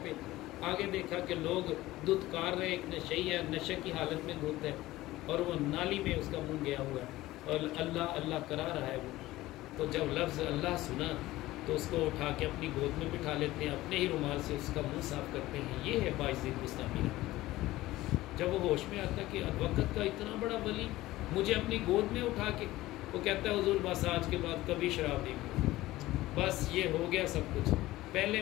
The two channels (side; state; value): right; quieter; 17.2 dB